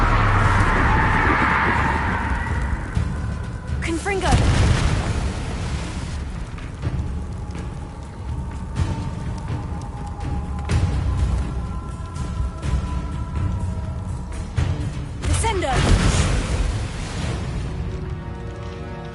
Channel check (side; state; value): both; identical; correlation 1.00